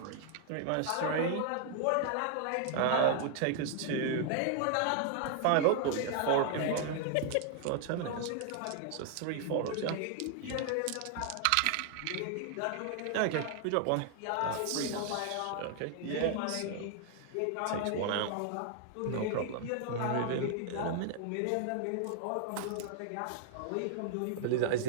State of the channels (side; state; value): both; different; correlation 0.00